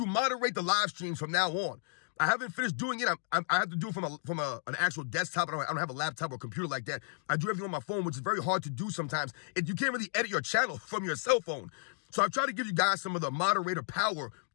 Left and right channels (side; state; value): right; silent; digital silence